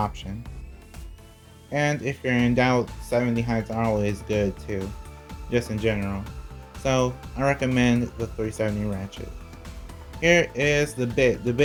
And if you're in doubt, 70 heights are always good too, just in general. So I recommend the 370 Ratchet. Here is the bit. The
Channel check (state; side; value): identical; both; correlation 1.00